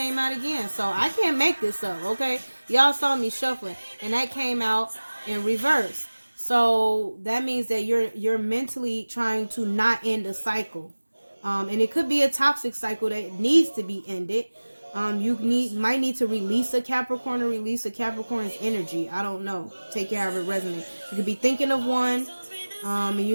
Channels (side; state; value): both; inverted; correlation -1.00